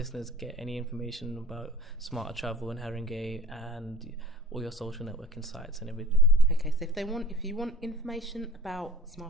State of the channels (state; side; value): normal; both; correlation 0.45